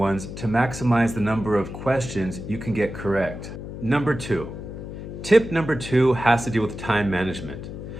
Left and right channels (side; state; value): left; noise; hum, 9 dB below the sound